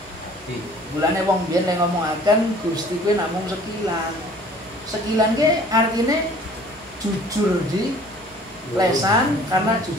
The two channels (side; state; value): both; normal; correlation 0.51